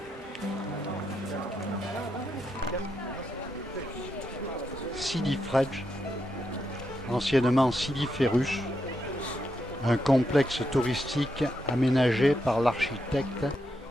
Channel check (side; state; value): both; normal; correlation 0.82